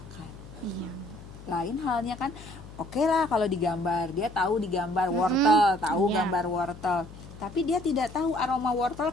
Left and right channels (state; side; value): noise; left; hum, 16 dB below the sound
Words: Iya. Lain halnya kan, oke lah kalau digambar, dia tahu digambar wortel, tahu Iya. gambar wortel. Tapi dia tidak tahu aroma wortel